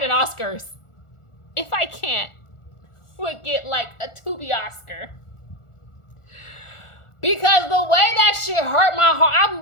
an Oscars, If I Can't would get like a Tubi Oscar. Because the way that shit hurt my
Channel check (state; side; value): late; right; 1.4 ms